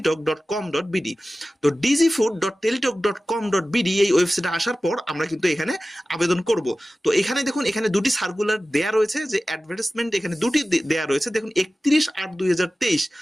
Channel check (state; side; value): normal; both; correlation 0.96